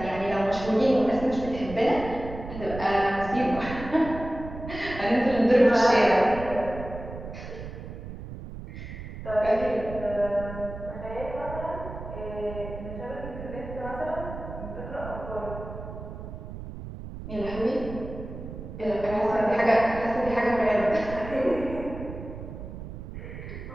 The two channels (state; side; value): noise; right; rumble, 10 dB below the sound